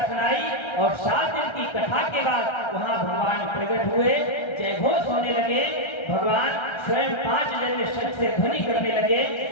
सुनाई और 7 दिन की कथा के बाद वहां भगवान प्रकट हुए, जय घोष होने लगे। भगवान स्वयं 5 जन्य शब्द से ध्वनि करने लगे।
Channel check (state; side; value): late; right; 1.3 ms